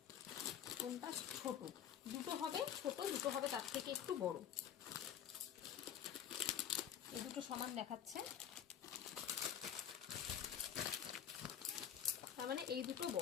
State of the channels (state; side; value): quieter; right; 9.4 dB